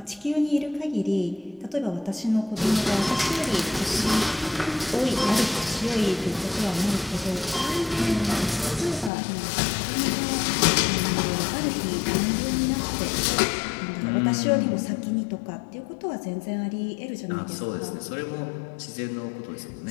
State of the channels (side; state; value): right; drops out; at 9.1 s